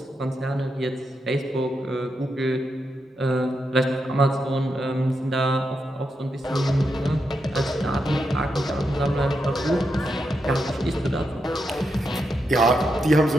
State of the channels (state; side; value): normal; both; correlation 0.84